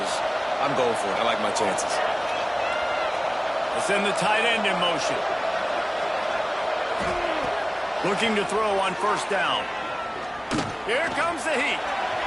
I'm going for it. I like my chances. Let's send the tight end in motion. Looking to throw on first down. Here comes the heat.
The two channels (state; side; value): identical; both; correlation 1.00